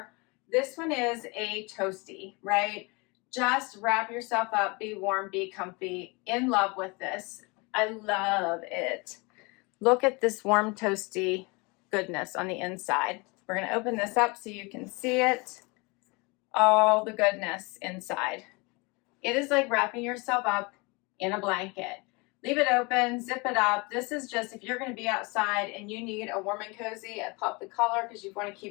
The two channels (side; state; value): right; quieter; 27.8 dB